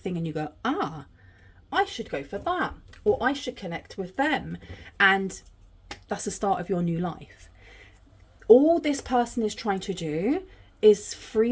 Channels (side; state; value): both; identical; correlation 1.00